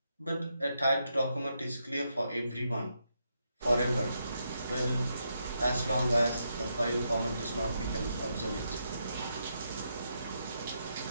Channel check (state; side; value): inverted; both; correlation -0.81